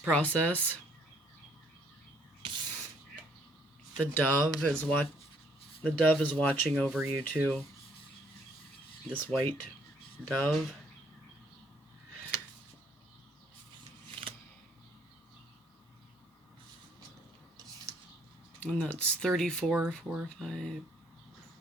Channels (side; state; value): both; normal; correlation 0.65